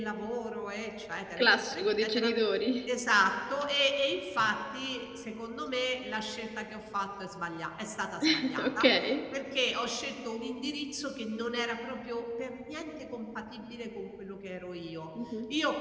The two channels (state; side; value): identical; both; correlation 1.00